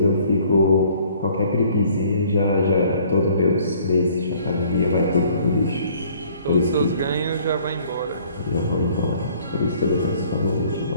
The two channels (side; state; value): both; inverted; correlation -0.57